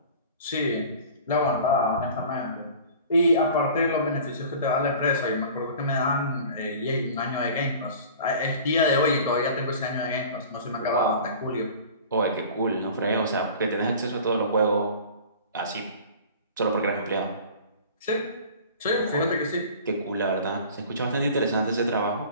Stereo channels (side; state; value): both; inverted; correlation -0.42